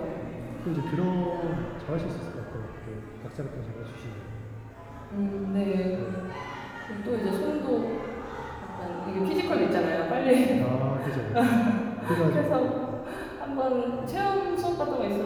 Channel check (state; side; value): identical; both; correlation 1.00